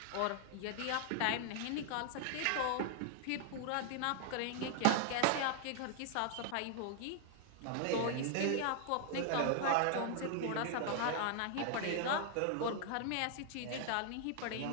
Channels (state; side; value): different; both; correlation 0.00